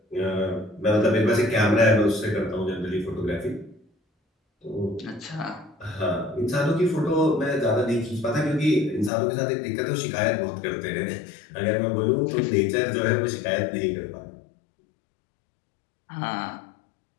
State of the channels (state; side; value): drops out; right; at 9.1 s